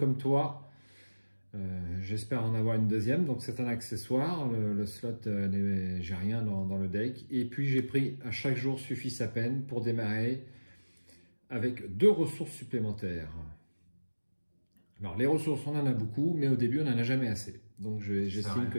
toi. J'espère en avoir une deuxième, donc c'est un accessoire. Le slot, j'ai rien dans le deck. Et puis j'ai pris à chaque jour suffit sa peine pour démarrer avec 2 ressources supplémentaires. Alors les ressources, on en a beaucoup, mais au début on n'en a jamais assez. Donc j'estime que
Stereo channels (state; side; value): inverted; both; correlation -1.00